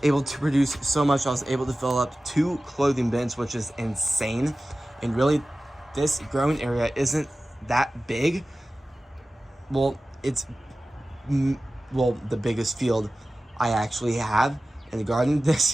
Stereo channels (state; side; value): normal; both; correlation 0.96